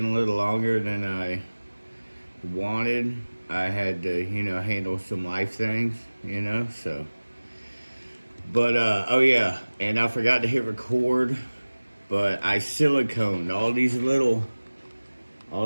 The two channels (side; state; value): both; inverted; correlation -1.00